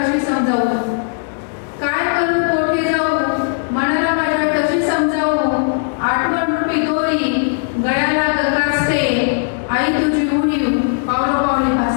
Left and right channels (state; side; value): silent; right; digital silence